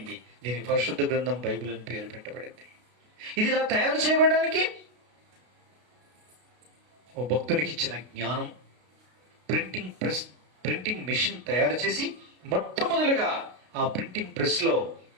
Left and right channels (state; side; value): late; left; 32 ms